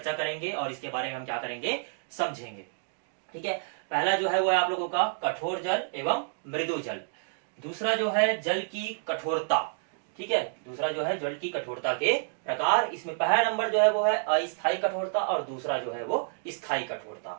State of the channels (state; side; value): silent; left; digital silence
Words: करेंगे और इसके बारे में हम क्या करेंगे, समझेंगे। ठीक है, पहला जो है वो है आप लोगों का कठोर जल एवं मृदु जल। दूसरा जो है जल की कठोरता। ठीक है, दूसरा जो है जल की कठोरता के प्रकार। इसमें पहला नंबर जो है वो है अस्थायी कठोरता और दूसरा जो है वो स्थायी कठोरता।